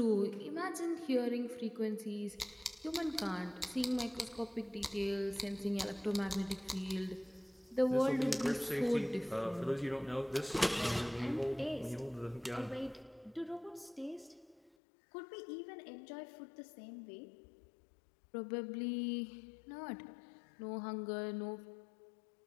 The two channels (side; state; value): right; drops out; at 14.7 s